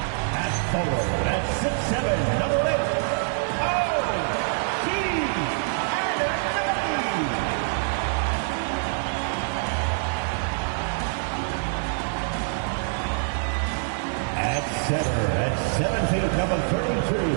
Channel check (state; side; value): silent; left; 61 dB below the other